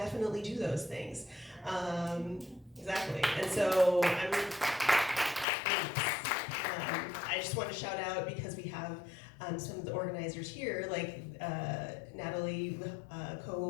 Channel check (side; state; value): right; drops out; at 5.5 s